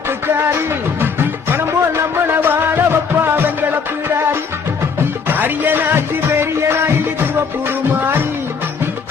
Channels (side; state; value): right; quieter; 5.6 dB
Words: பணம் போல் நம்மள வாழ வப்பா வெங்கட பீடாரி அரியனாட்சி பெரிய நாயகி திருவப்பூர் மாறி